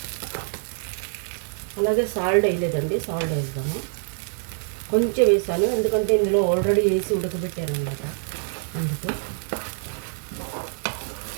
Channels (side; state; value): left; silent; 62 dB below the other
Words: అలాగే సాల్ట్ వేయలేదండి, సాల్ట్ వేద్దాము. కొంచెం వేసాను ఎందుకంటే ఇందులో ఆల్రెడీ వేసి ఉడకబెట్టాను అన్నమాట, అందుకు.